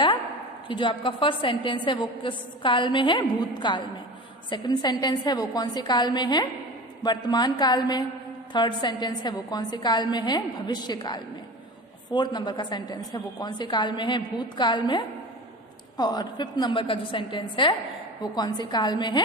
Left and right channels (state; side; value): normal; both; correlation 0.33